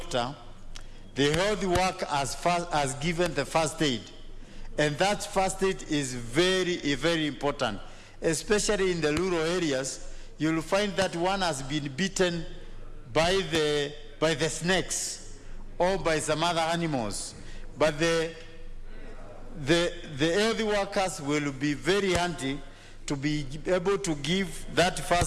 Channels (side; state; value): both; identical; correlation 1.00